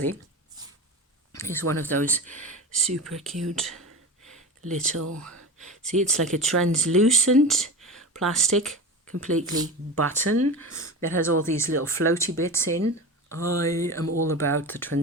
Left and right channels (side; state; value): both; normal; correlation 0.28